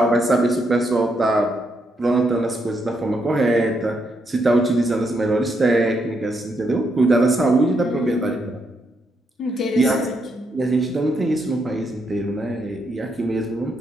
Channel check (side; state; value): both; normal; correlation 0.78